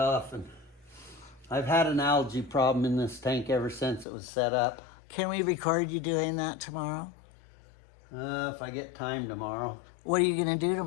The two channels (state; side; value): drops out; right; at 4.0 s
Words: and I've had an algae problem in this tank ever since it was set up. Can we record you doing that tomorrow? If I get time tomorrow. What are you going to do